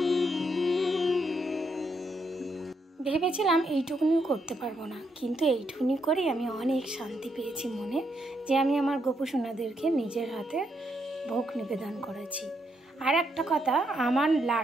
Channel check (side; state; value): both; normal; correlation 0.78